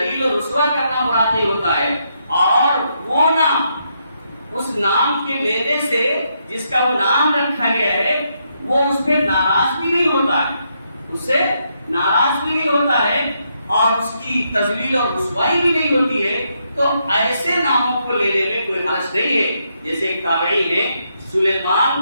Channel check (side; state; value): both; inverted; correlation -0.78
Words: و رسوا کرنا مراد نہیں ہوتا ہے، اور وہ نام اس نام کے لینے سے جس کا وہ نام رکھا گیا ہے وہ اس پہ ناراض بھی نہیں ہوتا ہے، اس سے ناراض بھی نہیں ہوتا ہے اور اس کی تذلیل اور رسوائی بھی نہیں ہوتی ہے، تو ایسے ناموں کو لینے میں کوئی حرج نہیں ہے۔ جیسے ایک تابعی ہے